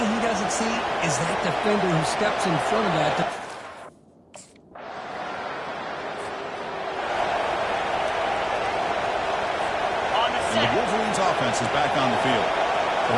he doesn't see is that defender who steps in front of that. And the Wolverines offense is back on the field. The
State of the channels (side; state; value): both; identical; correlation 1.00